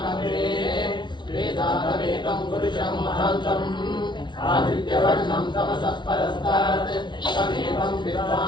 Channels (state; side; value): late; right; 0.22 ms